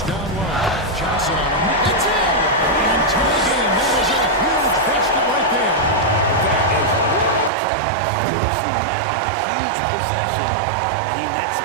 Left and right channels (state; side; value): drops out; left; at 7.5 s